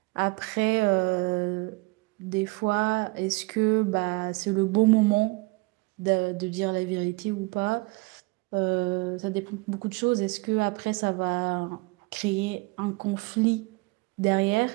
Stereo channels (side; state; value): left; quieter; 26.2 dB